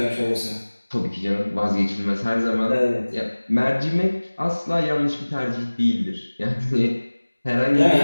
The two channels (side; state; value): both; inverted; correlation -1.00